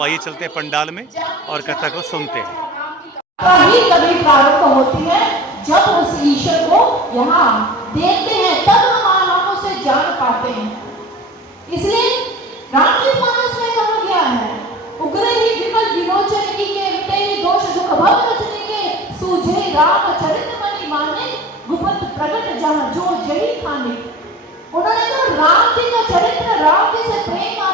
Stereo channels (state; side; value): normal; both; correlation 0.38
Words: आइए चलते हैं पंडाल में और कथा को सुनते हैं। कभी प्रारंभ होती है जब उस ईश्वर को यहाँ देखते हैं, तब हम उसे जान पाते हैं। इसलिए रामचरित मानस में कहा गया है, उग्र ही विमल विलोचन की के मिटे ही दोष दुख भव रचने के सूझे राम चरित मणि माने गुप्त प्रगट जहाँ जो जही खाने। उन्होंने कहा राम जी का चरित्र, राम जी से प्रेम